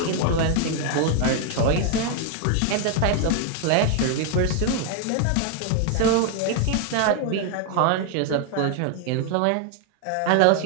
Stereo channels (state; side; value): different; both; correlation 0.00